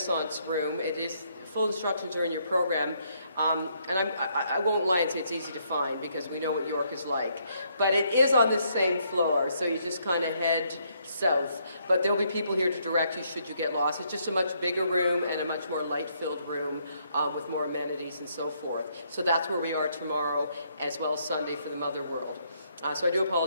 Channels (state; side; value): inverted; both; correlation -0.72